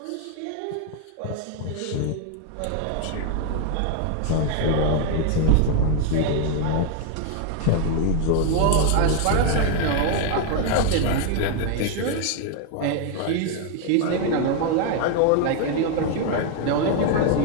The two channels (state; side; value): different; both; correlation 0.01